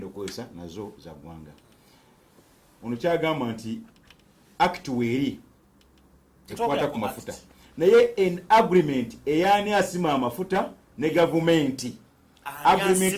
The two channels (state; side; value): identical; both; correlation 1.00